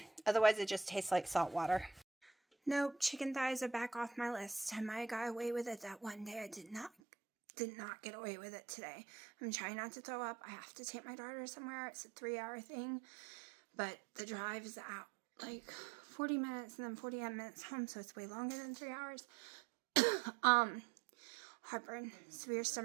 it just tastes like salt water. Nope, chicken thighs are back off my list. I might have got away with it that one day. I did not get away with it today. I'm trying not to throw up. I have to take my daughter somewhere. It's a 3-hour thing. But the drive is out like 40 minutes and then 48 minutes home. So it's way longer than 3 hours. Heartburn, severe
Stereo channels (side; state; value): left; drops out; at 6.9 s